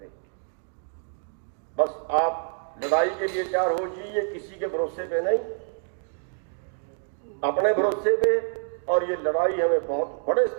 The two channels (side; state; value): left; silent; 59 dB below the other